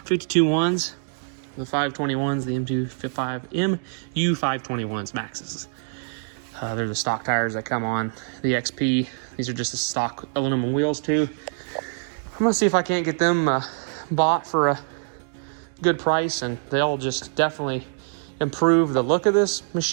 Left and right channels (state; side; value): silent; left; digital silence